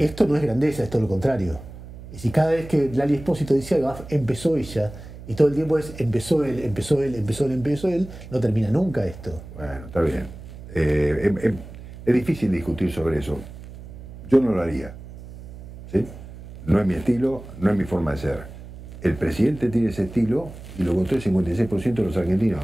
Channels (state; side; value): noise; right; hum, 15 dB below the sound